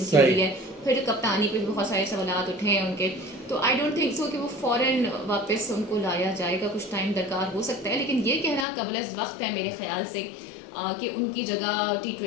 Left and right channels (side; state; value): right; drops out; at 8.7 s